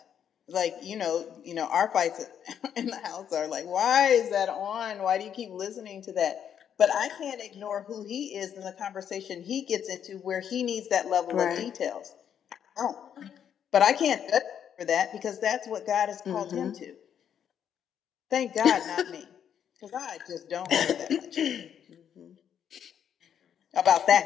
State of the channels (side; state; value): right; quieter; 8.8 dB